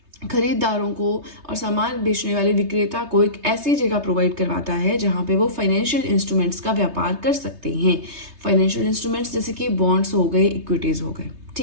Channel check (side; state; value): left; late; 3.3 ms